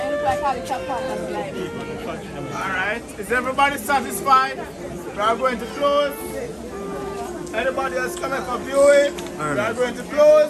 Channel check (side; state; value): both; identical; correlation 1.00